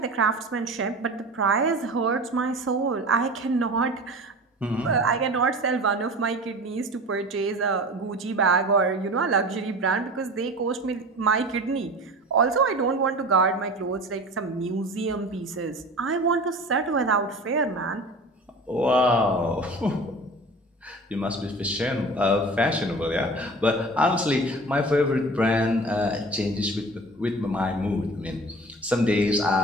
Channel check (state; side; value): normal; both; correlation 0.37